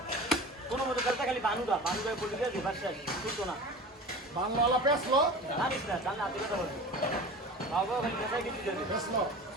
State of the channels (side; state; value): both; normal; correlation 0.36